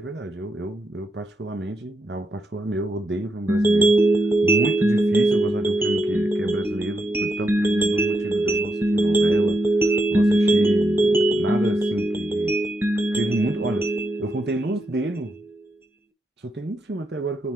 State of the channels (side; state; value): both; normal; correlation 0.82